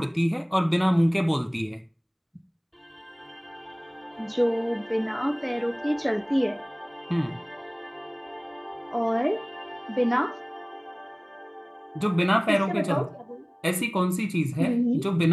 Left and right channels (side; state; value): both; identical; correlation 1.00